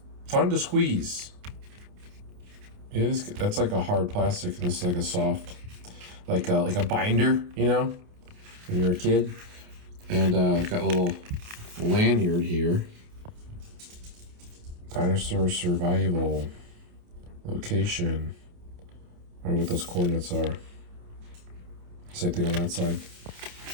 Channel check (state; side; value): late; left; 28 ms